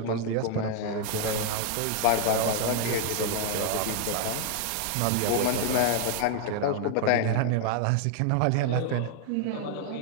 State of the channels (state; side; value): different; both; correlation 0.00